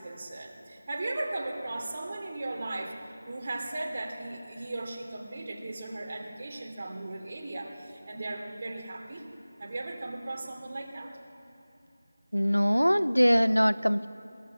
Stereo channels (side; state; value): both; inverted; correlation -0.99